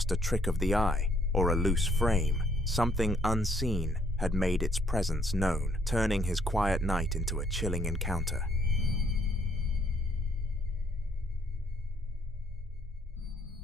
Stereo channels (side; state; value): both; normal; correlation 0.67